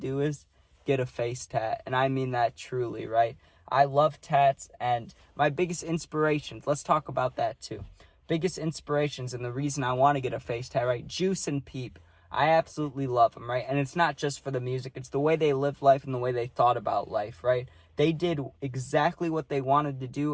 is get a face tat. And I mean that truly, right? I love tats, and my biggest inspirations, let's talk about that too. Biggest inspirations and the reason I want to get a face tat, right? Juice and Peep. I absolutely love them, right? And it's not just for the music. It's the way they lived life and the way they thought about life, right? They did exactly what they wanted to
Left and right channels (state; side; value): identical; both; correlation 1.00